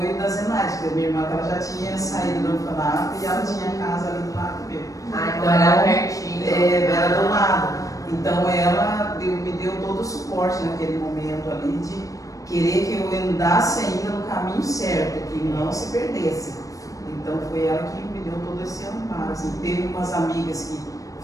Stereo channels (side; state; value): right; late; 0.16 ms